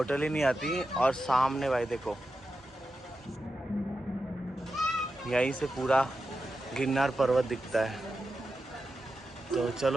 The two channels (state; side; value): normal; both; correlation 0.90